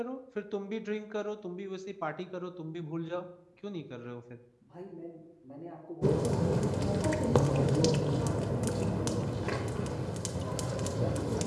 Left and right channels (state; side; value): identical; both; correlation 1.00